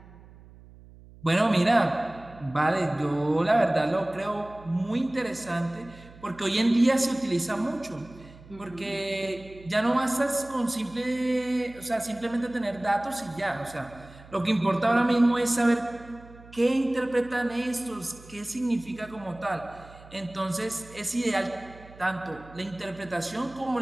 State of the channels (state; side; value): noise; right; hum, 21 dB below the sound